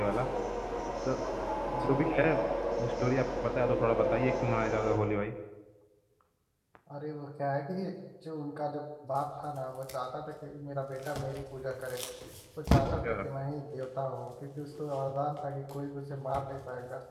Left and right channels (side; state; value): both; identical; correlation 1.00